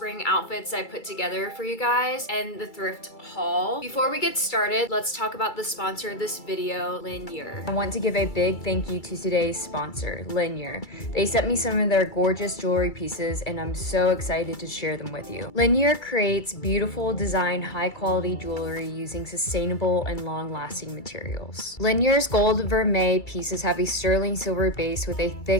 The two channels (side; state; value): right; late; 2.3 ms